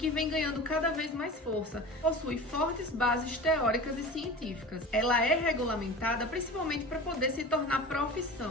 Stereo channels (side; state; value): both; normal; correlation 0.34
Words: vem ganhando cada vez mais força. Possui fortes bases teóricas e científicas. Ela é regulamentada principalmente para poder se tornar